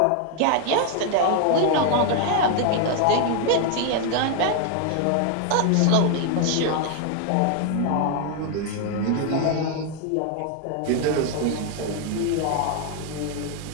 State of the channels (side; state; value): both; different; correlation 0.00